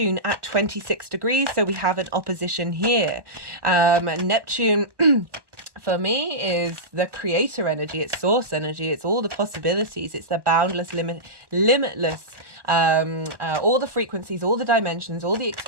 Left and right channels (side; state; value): left; late; 1.2 ms